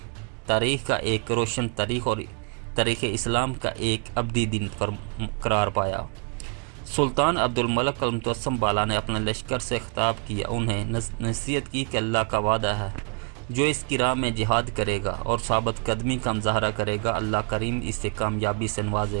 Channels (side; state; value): left; quieter; 39.7 dB